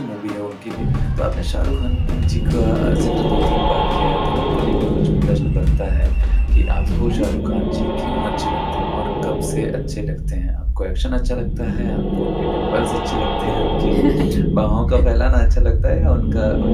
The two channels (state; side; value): identical; both; correlation 1.00